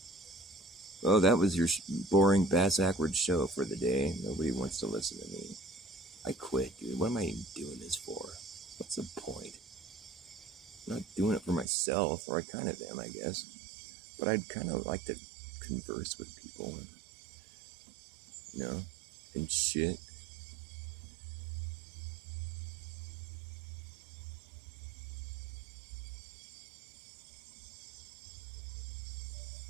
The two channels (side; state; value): left; drops out; at 11.7 s